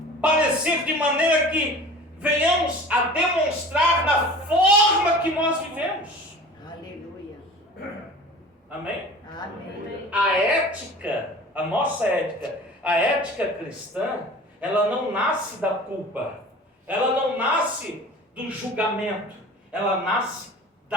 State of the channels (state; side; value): normal; both; correlation 0.40